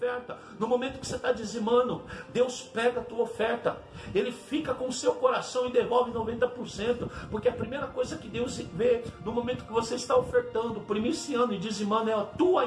no momento que você está dizimando, Deus pega a tua oferta, Ele fica com o seu coração e devolve 90%. Porque a primeira coisa que Deus vê no momento que você está ofertando, primiciando e dizimando, é a tua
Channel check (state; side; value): identical; both; correlation 1.00